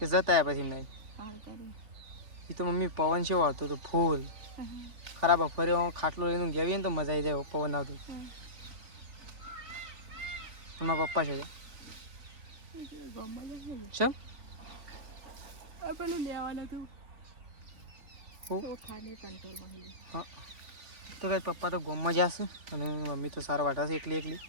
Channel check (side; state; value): left; late; 3.5 ms